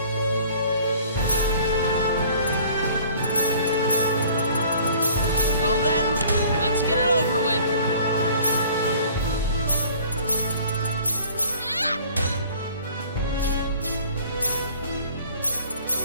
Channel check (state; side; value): inverted; both; correlation -0.51